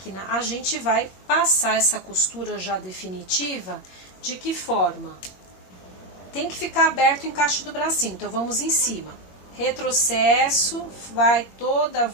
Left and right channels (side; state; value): right; late; 21 ms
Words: a gente vai passar essa costura já definitiva. De que forma? Tem que ficar aberto o encaixe do bracinho, então vamos em cima. Retrocesso, vai toda a